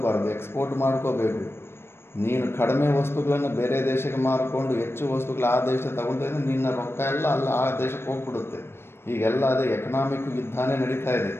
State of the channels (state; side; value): late; right; 0.12 ms